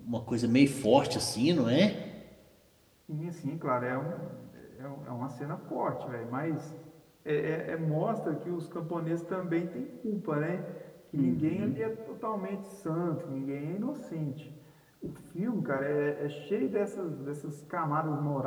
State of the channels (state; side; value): identical; both; correlation 1.00